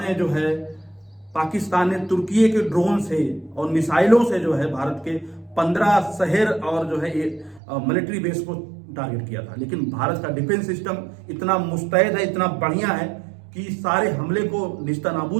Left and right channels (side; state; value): left; drops out; at 7.6 s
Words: में जो है पाकिस्तान ने तुर्की के ड्रोन से और मिसाइलों से जो है भारत के 15 शहर और जो है मिलिट्री बेस को टारगेट किया था। लेकिन भारत का डिफेंस सिस्टम इतना मुस्तैद है, इतना बढ़िया है कि सारे हमले को